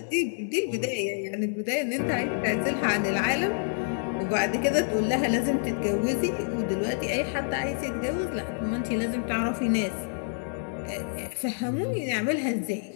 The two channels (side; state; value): right; silent; digital silence